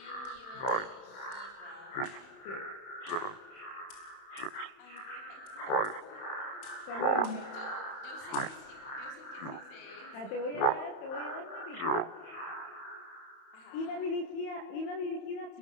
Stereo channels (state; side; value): late; right; 31 ms